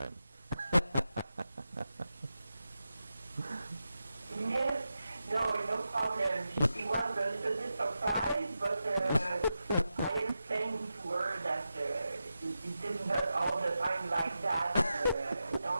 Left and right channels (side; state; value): both; inverted; correlation -0.90